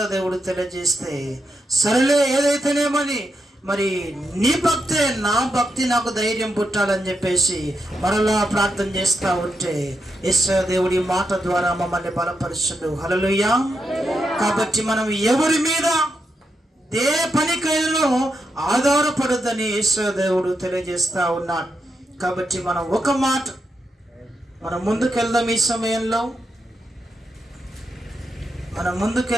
దేవుడు తెలియజేస్తే, సరేలే ఏదైతేనేమని మరి నీ భక్తే నా భక్తి నాకు ధైర్యం పుట్టాలని చెప్పేసి మరలా ప్రార్థన చేస్తూ ఉంటే యేసు దేవుడి మాట ద్వారా మమ్మల్ని బలపరుచుడు. హల్లెలూయా. కాబట్టి మనం ఎవరి మీద ఏ పనికైనా ఆధారపడద్దని యేసు దేవుడు తెలియజేస్తూ ఉన్నాడు. కాబట్టి మనం ఒక మాట మనం ముందుకెళ్దాం. ఈ సమయంలో మనం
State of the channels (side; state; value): both; normal; correlation 0.83